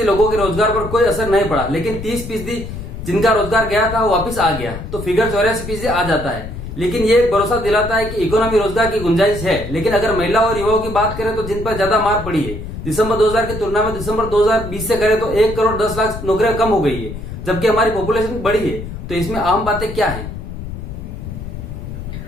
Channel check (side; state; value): left; noise; rumble, 9 dB below the sound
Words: लोगों के रोजगार पर कोई असर नहीं पड़ा, लेकिन 30% जिनका रोजगार गया था वो वापिस आ गया, तो फिगर 84% आ जाता है। लेकिन ये एक भरोसा दिलाता है कि इकोनॉमी रोजगार की गुंजाइश है। लेकिन अगर महिला और युवाओं की बात करें तो जिन पर ज्यादा मार पड़ी है, दिसंबर 2000 की तुलना में दिसंबर 2020 से करें तो 1 करोड़ 10 लाख नौकरियां कम हो गई है, जबकि हमारी पॉपुलेशन बढ़ी है। तो इसमें आम बातें क्या है?